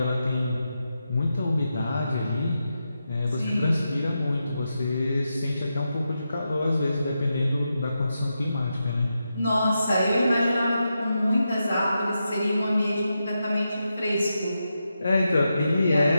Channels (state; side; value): inverted; both; correlation -0.87